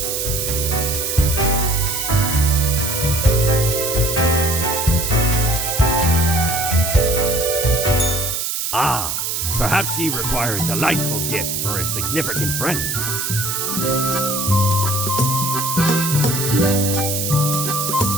Ah, perhaps ye require a delightful gift for a significant friend.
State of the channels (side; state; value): right; noise; hiss, 2 dB below the sound